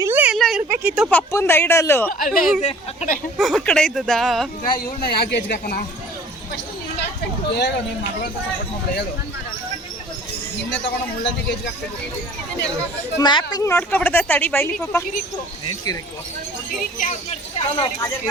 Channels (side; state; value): both; normal; correlation 0.49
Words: ಇಲ್ಲೇ ಎಲ್ಲ ಇರ್ಬೇಕಿತ್ತು ಪಪ್ಪಂದ ಐಡಲ್ಲು ಅಲ್ಲೇ ಇದೆ ಆ ಕಡೆ. ಆ ಕಡೆ ಇದ್ದದಾ? ಈಗ ಇವ್ರನ್ನ ಯಾಕೆ ಏಜ್ಗೆ ಹಾಕೋಣ? ಹೇಳು ನಿಮ್ಮ ಮಗಳು ಅಂತ ಸಪೋರ್ಟ್ ಮಾಡ್ಬಿಡ ಹೇಳು. ನಿನ್ನೆ ತಗೊಂಡು ಮುಳ್ಳಂದಿ ಏಜ್ಗೆ ಹಾಕ್ಬೇಕು. ಮ್ಯಾಪಿಂಗ್ ನೋಡ್ಕೊಬಿಡ್ದ ತಡಿ ಬೈಲಿ ಪಾಪ. ಏನ್ ಕಿರಿಕು?